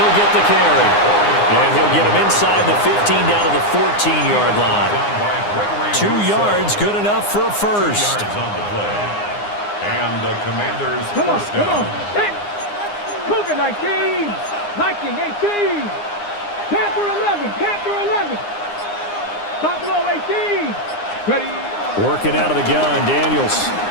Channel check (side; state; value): right; late; 9.7 ms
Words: get the carry. And he'll get him inside the 15 down to the 14-yard line. 2 yards, good enough for a first. And the Commanders first down. Cougar 19, Viking 18, Panther 11, Panther 11, Buffalo 18. Ready. Working out of the gun, Daniels.